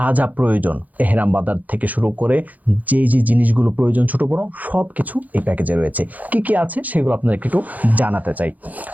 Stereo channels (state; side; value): late; left; 0.079 ms